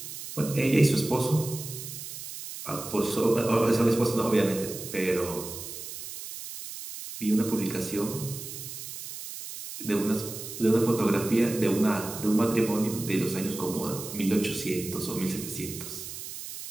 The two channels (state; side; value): noise; right; hiss, 10 dB below the sound